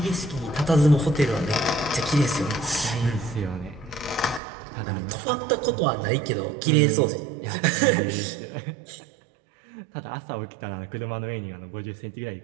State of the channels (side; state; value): left; drops out; at 4.4 s